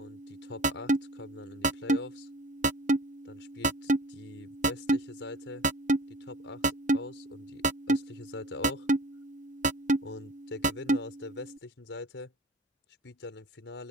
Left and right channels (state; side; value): normal; both; correlation 0.43